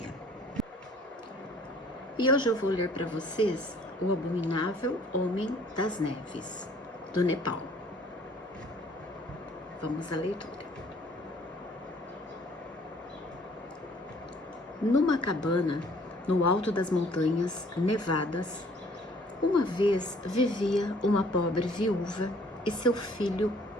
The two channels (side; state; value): both; normal; correlation 0.57